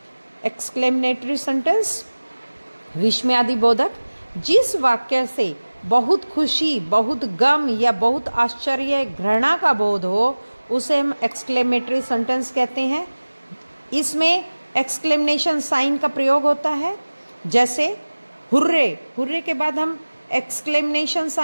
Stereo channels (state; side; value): inverted; both; correlation -1.00